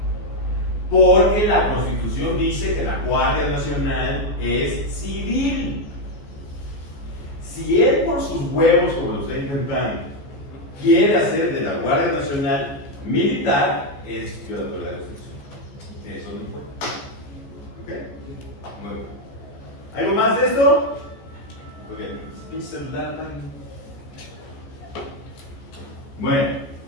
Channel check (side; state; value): right; late; 14 ms